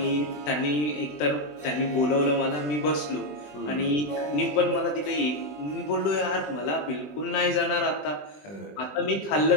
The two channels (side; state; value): right; late; 20 ms